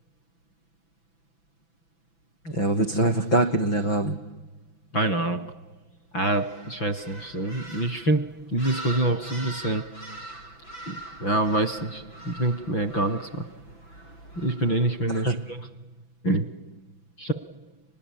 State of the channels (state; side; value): late; right; 6.0 ms